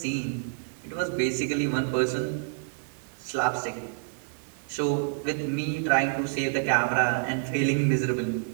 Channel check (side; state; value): left; silent; 59 dB below the other